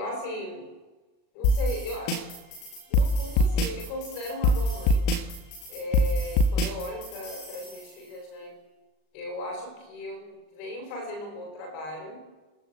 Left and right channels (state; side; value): late; right; 39 ms